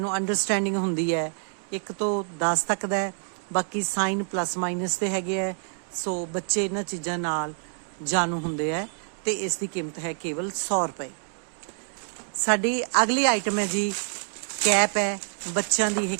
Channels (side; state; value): left; silent; 60 dB below the other